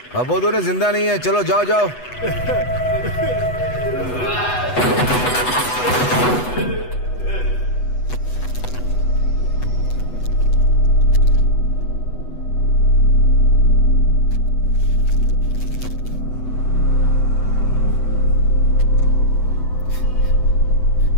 अब वो दोनों जिंदा नहीं है। चलो जाओ जाओ।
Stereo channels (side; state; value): right; late; 8.1 ms